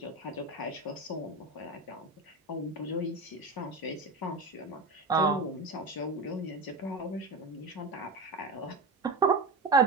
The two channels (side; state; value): left; quieter; 3.1 dB